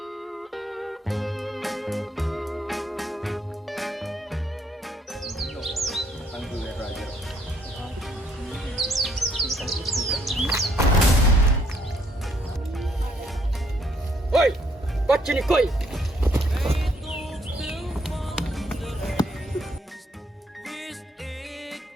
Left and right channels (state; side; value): normal; both; correlation 0.69